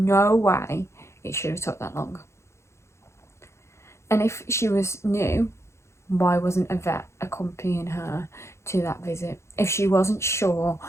way it should have took that long. And if she was new, why wasn't a vet accompanying her to that visit? If she wasn't sure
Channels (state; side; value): late; right; 0.13 ms